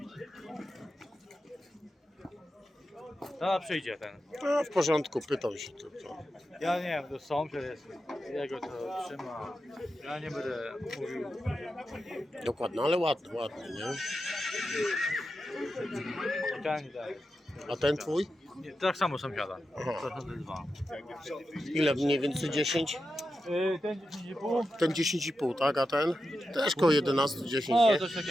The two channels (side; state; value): both; normal; correlation 0.89